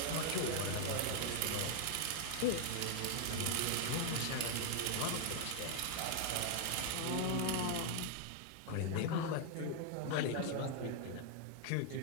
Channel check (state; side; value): different; both; correlation 0.00